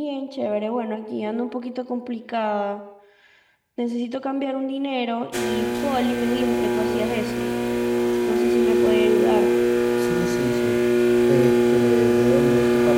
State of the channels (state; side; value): identical; both; correlation 1.00